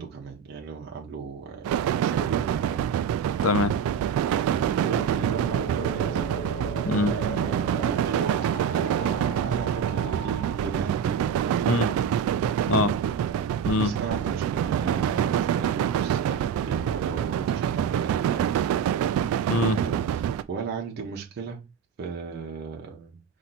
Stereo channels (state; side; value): quieter; left; 6.2 dB